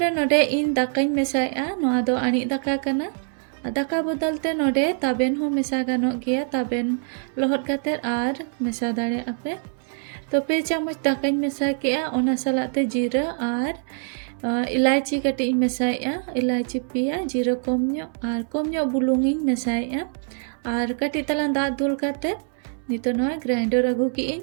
नोडे इन दाकाई मेसाया नोआ दो आनी दाका कना दाका बदलते नोडे ताबेन हो मेसा गानो गया ताबेन लोहट काते आर मेसा दाड़े आपे तो 2 चामच दाकाई मेसा किया ओना सलाते जीरा आर इलायची कटी मेसाया इलायची पिया जीरा कम बुलुंगी मेसाया आर कटी तलान दा दुल काते नितो नोआ ग्राइंडर अगु की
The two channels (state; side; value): silent; left; 56 dB below the other